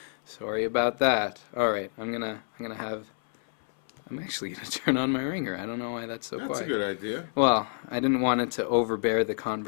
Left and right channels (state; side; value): silent; right; 59 dB below the other